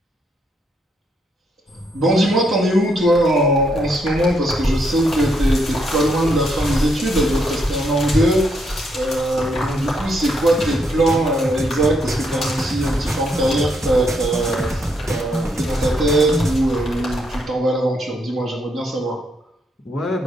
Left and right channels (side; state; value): both; normal; correlation 0.76